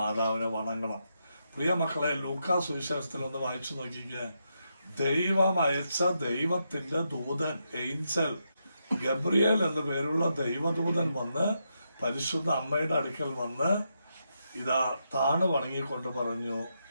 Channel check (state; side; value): inverted; both; correlation -0.83